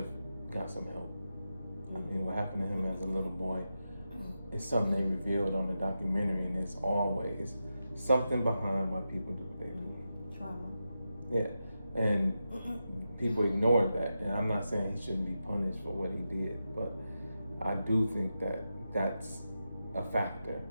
got some help. I mean, what happened to him as a little boy is something they revealed on the documentary, and it's always something behind why people do what they do. Trauma. Yeah, and people ignore that. And I'm not saying he shouldn't be punished for what he did, but I do think that that's a factor,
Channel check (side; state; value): both; inverted; correlation -0.89